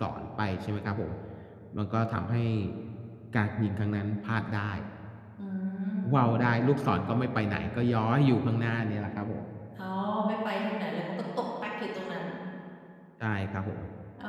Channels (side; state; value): both; identical; correlation 1.00